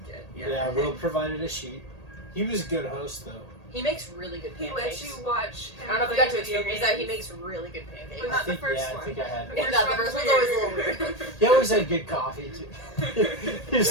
Yeah, Will provided a sheet. He was a good host, though. He makes really good He pancakes. lets you watch him. I don't know if you play got to video experience that. He games. makes really good pancakes. But not the first I one. think I had. The Yeah, first the one's first one's always a little weird. He always had good coffee too.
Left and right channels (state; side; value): late; right; 1.8 ms